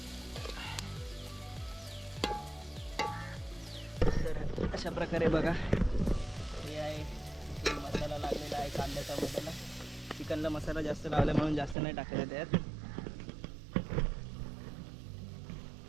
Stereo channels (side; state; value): left; drops out; at 11.8 s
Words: तर अशा प्रकारे बघा हे आहे इथे मसाला लागलेला आहे कांद्याचा मसाला. चिकनला मसाला जास्त लावला म्हणून जास्त नाही टाकायला त्यात.